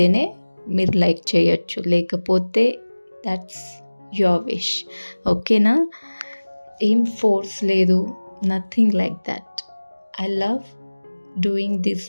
మీరు లైక్ చేయొచ్చు, లేకపోతే దట్స్ యువర్ విష్. ఓకేనా? ఏం ఫోర్స్ లేదు, nothing like that. I love doing this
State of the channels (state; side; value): inverted; both; correlation -1.00